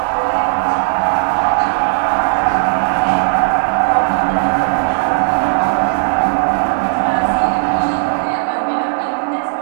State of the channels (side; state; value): left; silent; 62 dB below the other